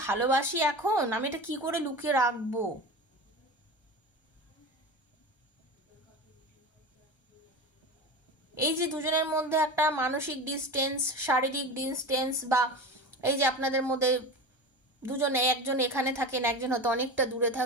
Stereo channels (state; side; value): late; right; 1.3 ms